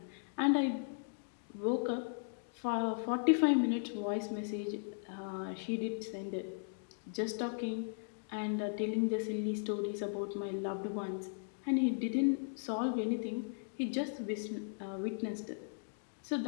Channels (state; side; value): silent; right; digital silence